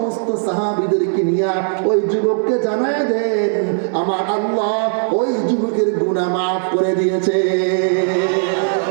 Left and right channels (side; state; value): left; silent; 68 dB below the other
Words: সাহাবীদেরকে নিয়ে ওই যুবককে জানায় দেন, আমার আল্লাহ ওই যুবকের গুনাহ মাফ করে দিয়েছে।